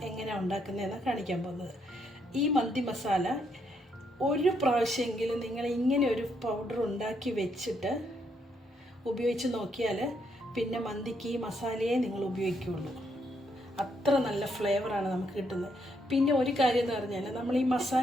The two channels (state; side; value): normal; both; correlation 0.75